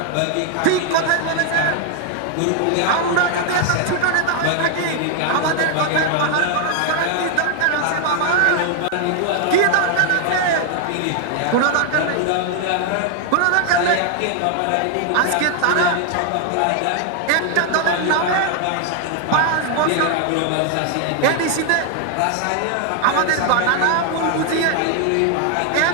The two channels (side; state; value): both; different; correlation 0.00